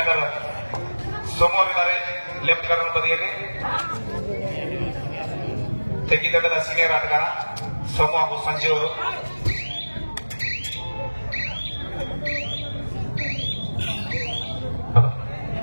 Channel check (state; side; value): inverted; both; correlation -1.00